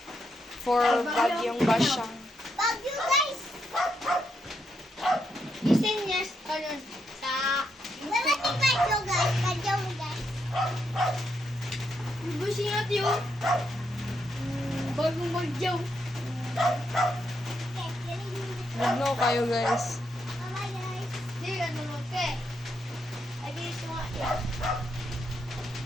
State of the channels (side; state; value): both; normal; correlation 0.80